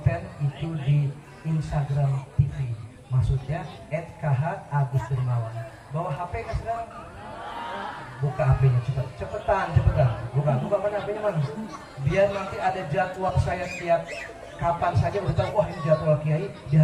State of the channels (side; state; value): both; identical; correlation 1.00